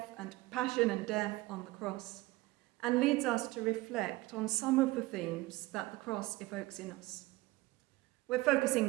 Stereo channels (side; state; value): left; quieter; 20.1 dB